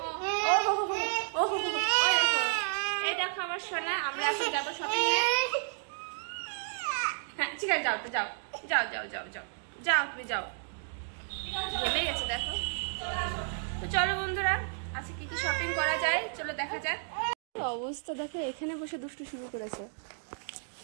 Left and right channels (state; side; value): silent; left; digital silence